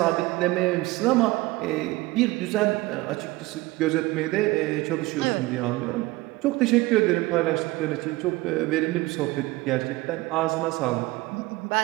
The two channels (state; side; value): quieter; left; 20.5 dB